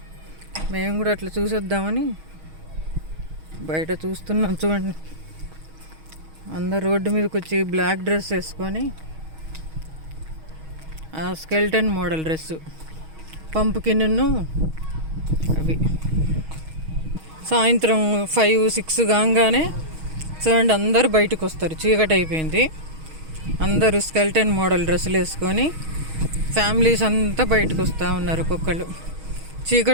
మేము కూడా అట్లా చూసొద్దామని బయట చూస్తున్నాం. చూడండి, అందరు రోడ్డు మీదకి వచ్చి బ్లాక్ డ్రెస్ వేసుకొని, స్కెల్టన్ మోడల్ డ్రెస్సు, పంపుకిన్ను అవి. సాయంత్రం 5-6 కాగానే చూడండి అందరూ బయటకు వస్తారు. చీకటి అయిపోయింది. అందరూ స్కెల్టన్ మోడల్ డ్రెస్సులు వేసుకొని ఫ్యామిలీస్ అంతా బయటకు వస్తూ ఉన్నారు. ఒక్కొక్కళ్ళు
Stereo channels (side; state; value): left; late; 6.3 ms